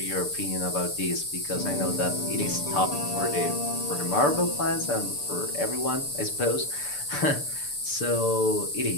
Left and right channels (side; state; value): right; late; 6.8 ms